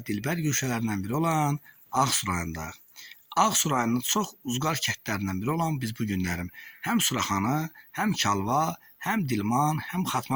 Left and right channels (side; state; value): both; identical; correlation 1.00